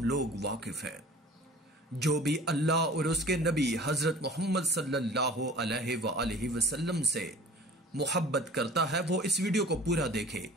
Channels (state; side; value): normal; both; correlation 0.45